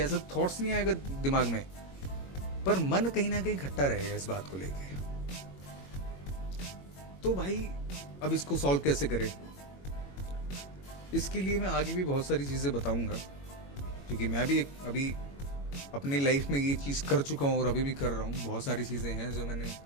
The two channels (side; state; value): right; late; 21 ms